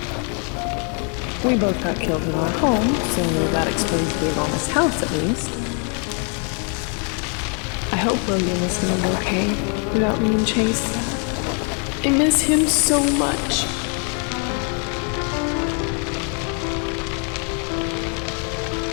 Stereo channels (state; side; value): quieter; right; 39.7 dB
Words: We both got killed in our home, so that explains the enormous house at least. I hope William is doing okay without me and Chase. I miss him so much.